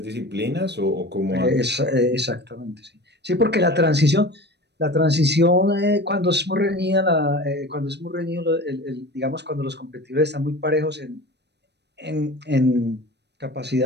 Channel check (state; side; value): late; left; 0.49 ms